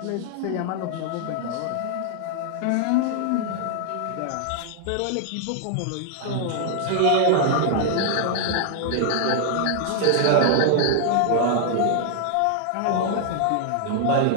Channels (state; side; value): different; both; correlation 0.00